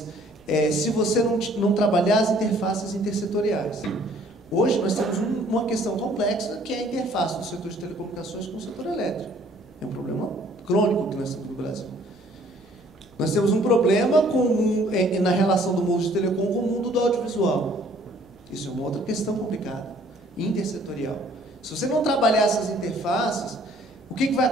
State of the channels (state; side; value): normal; both; correlation 0.58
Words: se você não trabalhar as interfaces intersetoriais. Hoje nós temos uma questão complexa, que é a interface do setor de telecomunicações com o setor elétrico. É um problema crônico que nós temos no Brasil. Nós temos um problema na relação do mundo de telecom com o mundo do audiovisual. Isso é uma outra questão complicada, intersetorial. Se você não trabalhar essas interfaces, o que vai